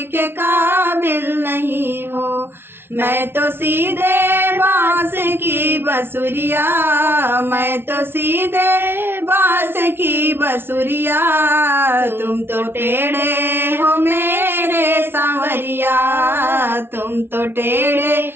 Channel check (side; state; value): left; late; 0.11 ms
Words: के काबिल नहीं हो। मैं तो सीधे बांस की बसुरिया, मैं तो सीधे बांस की बसुरिया, तुम तो टेढ़े हो मेरे सांवरिया, तुम तो टेढ़े